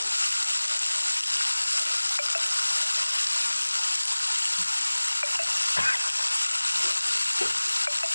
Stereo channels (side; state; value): both; inverted; correlation -1.00